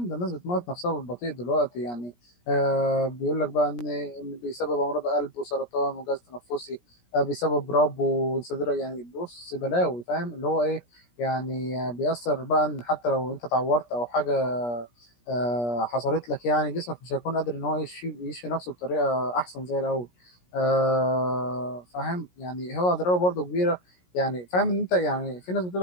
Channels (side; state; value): right; late; 17 ms